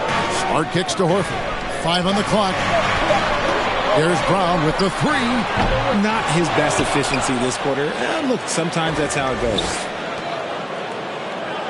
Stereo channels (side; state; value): both; identical; correlation 1.00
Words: Smart kicks to Horford. 5 on the clock. There's Brown with the 3. Not his best efficiency this quarter. Look, sometimes that's how it goes.